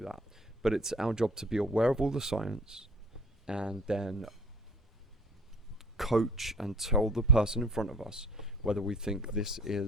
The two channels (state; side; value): normal; both; correlation 0.49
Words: that. But it's our job to be aware of all the science and then coach and tell the person in front of us whether we think this